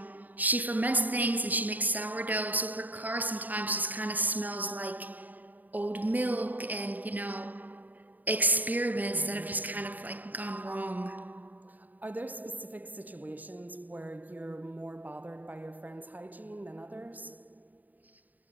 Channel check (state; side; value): late; left; 0.083 ms